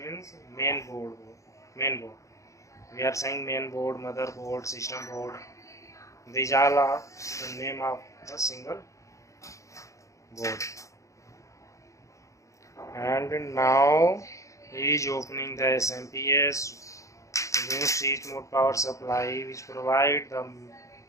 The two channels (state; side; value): late; right; 0.15 ms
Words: means main board. We are saying main board, motherboard, system board. These all are the name of a single board. And now he is opening the SMPS new switch mode power supply, which provide the